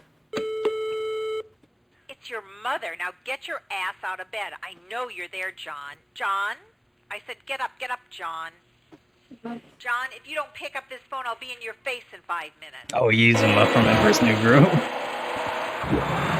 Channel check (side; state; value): both; identical; correlation 1.00